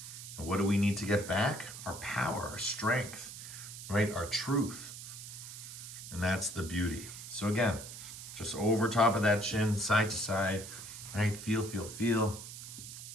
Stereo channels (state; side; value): noise; right; hiss, 11 dB below the sound